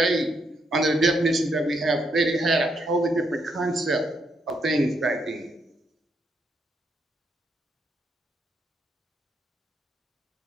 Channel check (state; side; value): normal; both; correlation 0.77